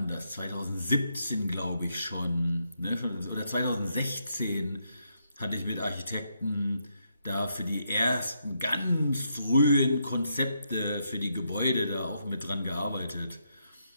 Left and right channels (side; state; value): both; inverted; correlation -0.79